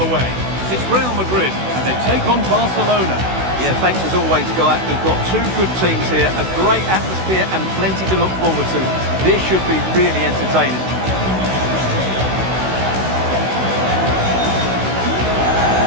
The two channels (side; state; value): left; late; 16 ms